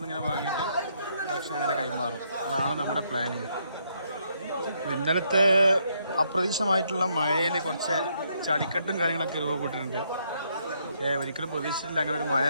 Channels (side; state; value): both; inverted; correlation -0.73